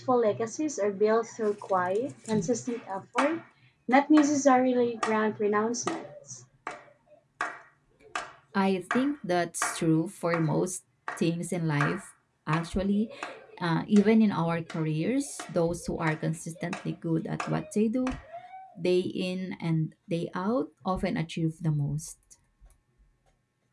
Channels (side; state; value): both; identical; correlation 1.00